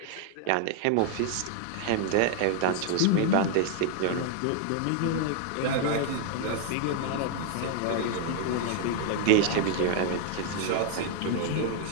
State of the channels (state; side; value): different; both; correlation 0.00